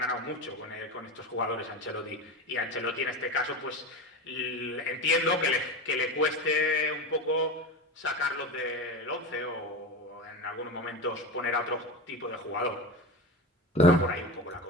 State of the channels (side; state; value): both; normal; correlation 0.24